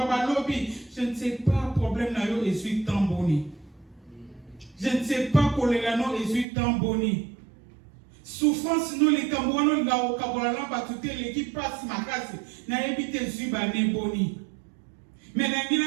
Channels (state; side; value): drops out; left; at 6.5 s